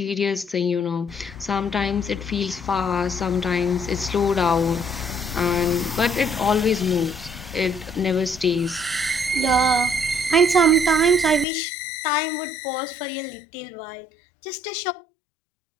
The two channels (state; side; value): drops out; right; at 11.5 s